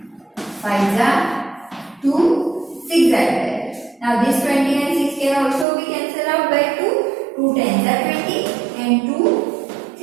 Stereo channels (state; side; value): drops out; left; at 5.7 s